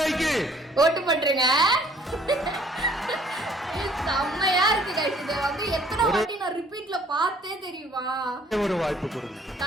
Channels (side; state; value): both; normal; correlation 0.58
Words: ஓட்டு பண்றீங்க. செம்மையா இருக்கு கைஸ். இத வந்து எத்தனை வாட்டி நான் ரிப்பீட்ல பார்த்தே தெரியுமா? ஒரு வாய்ப்பு கொடுங்க.